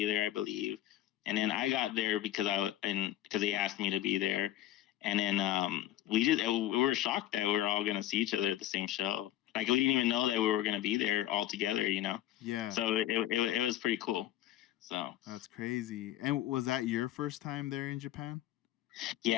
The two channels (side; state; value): right; quieter; 13.8 dB